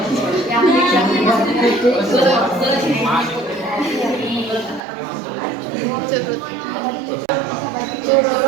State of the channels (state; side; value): drops out; left; at 4.8 s